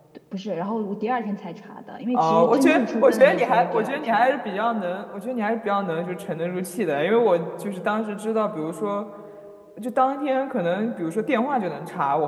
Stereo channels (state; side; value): identical; both; correlation 1.00